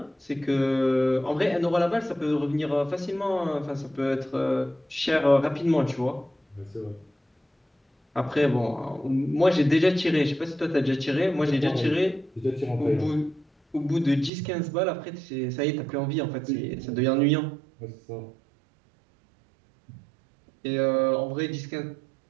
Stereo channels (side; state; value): left; drops out; at 14.3 s